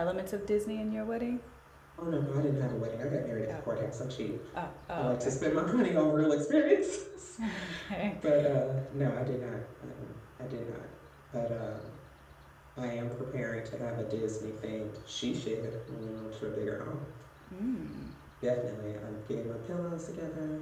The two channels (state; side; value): identical; both; correlation 1.00